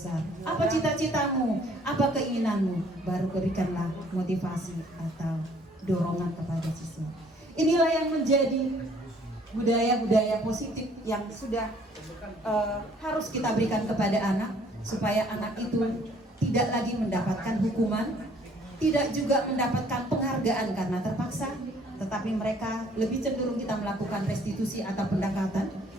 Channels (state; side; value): normal; both; correlation 0.60